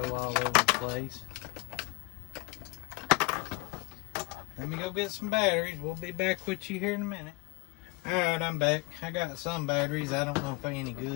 all over the place. Let me go get some batteries. We'll be back with you here in a minute. Alright, I'm back. I got some batteries. I don't know if they're any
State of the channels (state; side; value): quieter; right; 26.9 dB